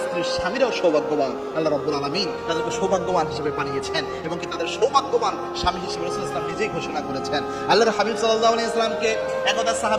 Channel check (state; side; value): identical; both; correlation 1.00